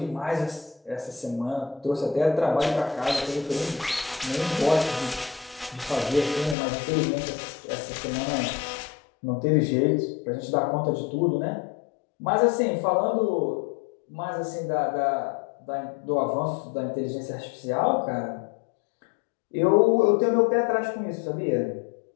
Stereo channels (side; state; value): right; drops out; at 6.6 s